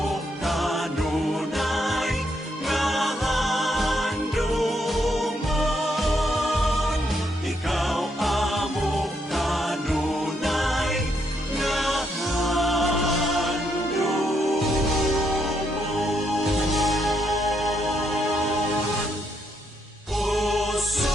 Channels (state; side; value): normal; both; correlation 0.76